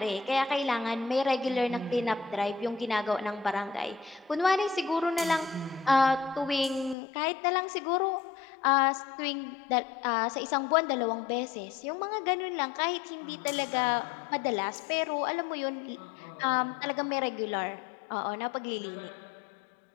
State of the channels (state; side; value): drops out; right; at 7.0 s